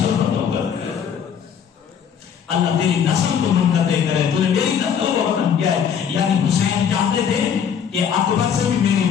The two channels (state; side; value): quieter; right; 7.8 dB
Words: اللہ تیری نسل کو منقطع کرے، تو نے میری نسل کو ختم کیا ہے. یعنی حسین چاہتے تھے کہ اکبر سے بھی میری